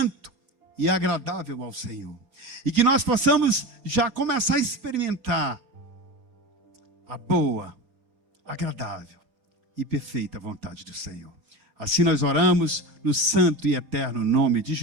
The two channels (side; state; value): left; late; 4.3 ms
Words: e agradável ao Senhor. E que nós possamos já começar a experimentar a boa, agradável e perfeita vontade do Senhor. Assim nós oramos no santo e eterno nome de